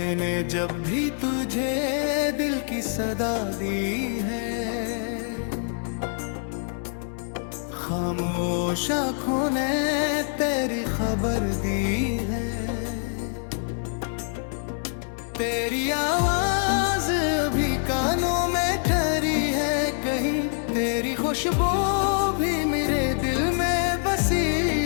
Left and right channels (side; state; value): right; silent; digital silence